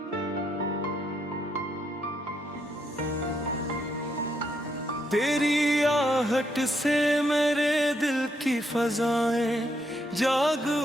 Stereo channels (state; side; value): normal; both; correlation 0.77